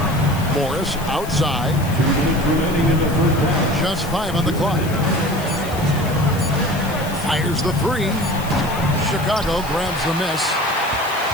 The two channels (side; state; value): left; noise; hiss, 15 dB below the sound